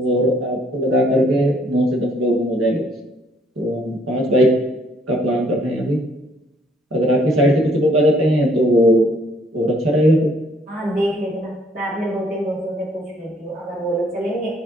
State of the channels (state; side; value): normal; both; correlation 0.64